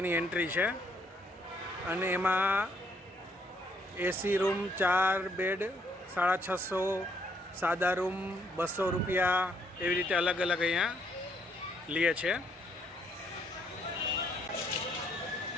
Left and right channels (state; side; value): normal; both; correlation 0.70